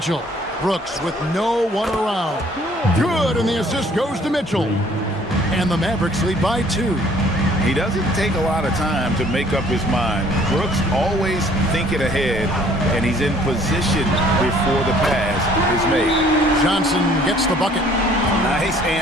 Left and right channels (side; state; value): both; normal; correlation 0.58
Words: Brooks with no one around. Good, and the assist goes to Mitchell. And the Mavericks lead by 2. He doesn't take a lot of time to make up his mind. Brooks always thinking ahead, and he's in position before the pass is made. Johnson gets the bucket. Nice